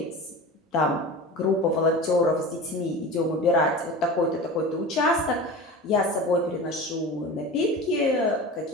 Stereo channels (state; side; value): normal; both; correlation 0.32